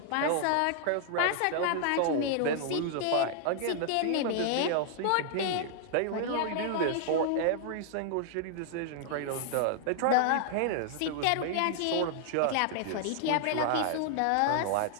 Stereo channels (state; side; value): different; both; correlation -0.01